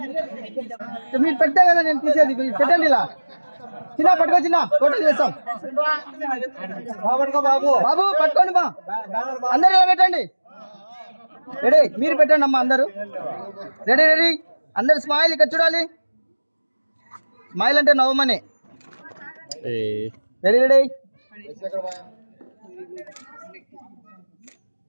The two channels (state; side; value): inverted; both; correlation -1.00